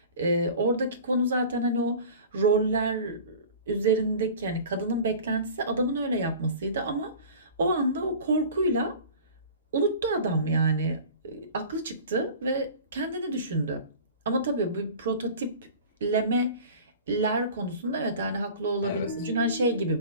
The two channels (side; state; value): both; inverted; correlation -0.40